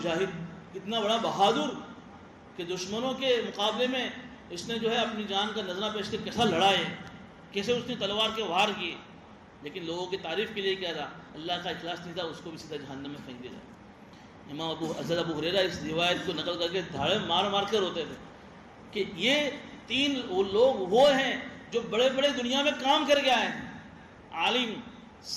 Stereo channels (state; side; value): identical; both; correlation 1.00